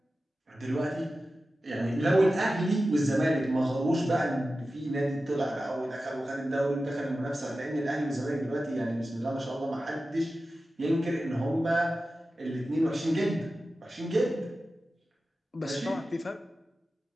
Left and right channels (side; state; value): both; normal; correlation 0.94